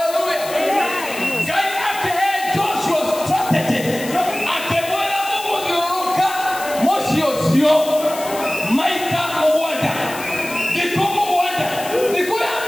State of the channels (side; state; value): left; noise; hiss, 12 dB below the sound